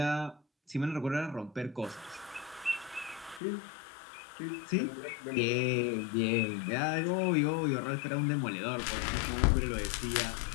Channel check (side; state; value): right; drops out; at 3.4 s